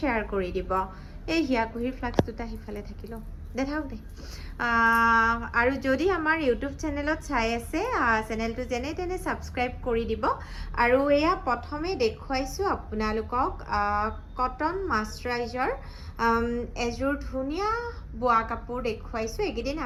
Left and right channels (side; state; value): both; identical; correlation 1.00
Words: কৰি দিব এই হিয়াকুহিৰ ফ্লাক্স দুটা হিফালে থাকিলো দেখাওক দে আৰু যদি আমাৰ ইউটিউব চেনেলত চাই আছে চেনেলটো যেনে তেনে সাবস্ক্ৰাইব কৰি দিব আৰু এয়া প্ৰথমে দেখুৱাইছোঁ আপোনালোকক কটন মাস্টাৰাইজাৰ এযোৰ ধুনীয়া বোৱা কাপোৰ দেখুৱাইছোঁ এইকেইদিন